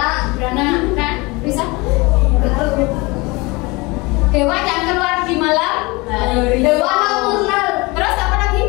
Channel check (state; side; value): quieter; right; 24.8 dB